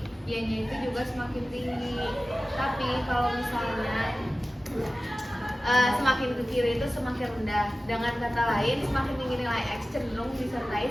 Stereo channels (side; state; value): both; normal; correlation 0.96